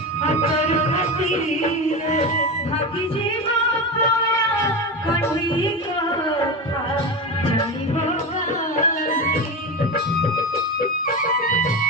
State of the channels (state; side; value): normal; both; correlation 0.20